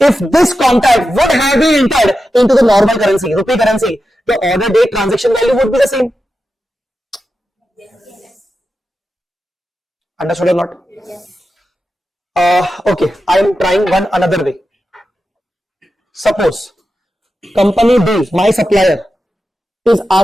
If this contract would have been entered into the normal currency, rupee currency, the order date transaction value would be the same. Yes. Understood or not? Yes. Okay, I am trying one another way. Suppose company B, my supplier, is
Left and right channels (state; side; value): normal; both; correlation 0.91